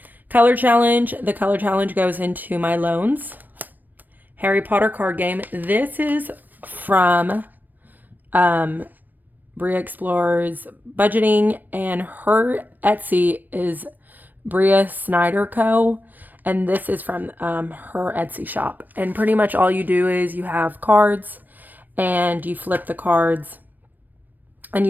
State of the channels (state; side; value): late; left; 0.089 ms